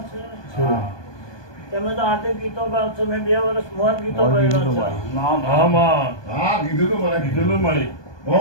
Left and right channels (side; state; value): right; late; 1.2 ms